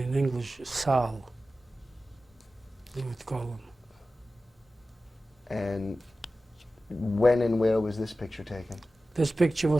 English, Sal, they would call him. And when and where was this picture taken? This picture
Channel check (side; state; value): both; normal; correlation 0.94